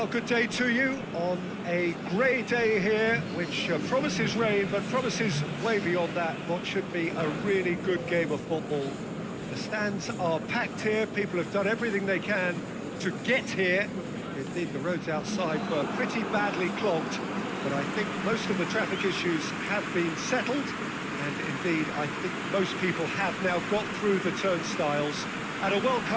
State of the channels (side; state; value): both; identical; correlation 1.00